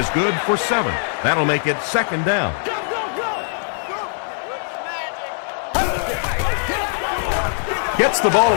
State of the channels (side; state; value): right; silent; 65 dB below the other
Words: good for 7. That'll make it 2nd down. Gets the ball